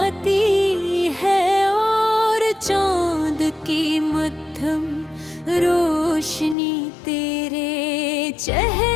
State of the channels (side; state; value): right; drops out; at 6.6 s